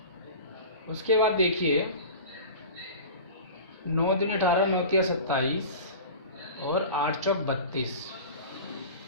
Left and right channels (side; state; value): both; inverted; correlation -0.35